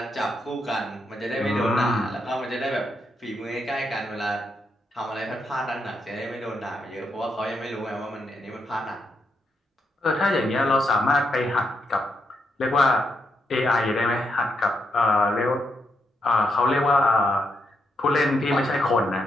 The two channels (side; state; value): both; normal; correlation 0.80